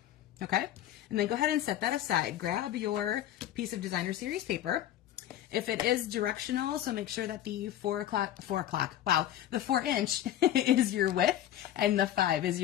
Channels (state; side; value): quieter; right; 12.1 dB